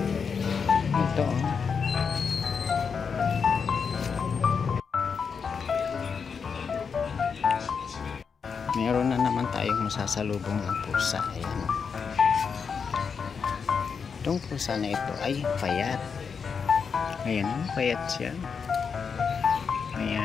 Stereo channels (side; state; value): right; quieter; 6.0 dB